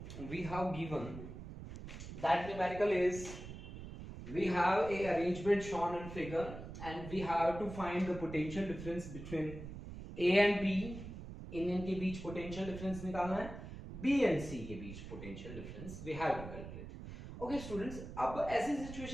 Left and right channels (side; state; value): right; noise; rumble, 10 dB below the sound